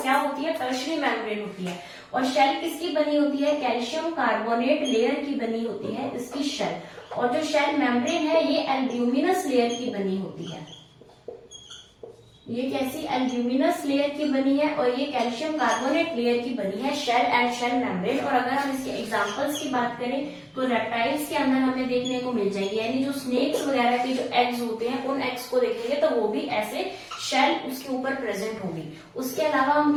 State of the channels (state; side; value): identical; both; correlation 1.00